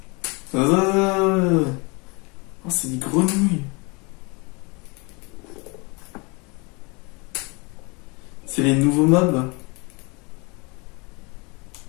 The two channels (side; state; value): right; quieter; 29.3 dB